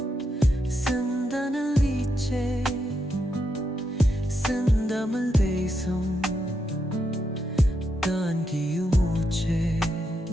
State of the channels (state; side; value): normal; both; correlation 0.82